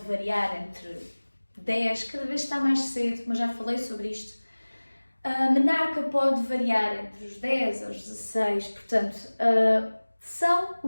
variar entre 10, cada vez está mais cedo, mas já falei sobre isto. A menarca pode variar entre os 10 aos 16, portanto, são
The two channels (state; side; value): inverted; both; correlation -1.00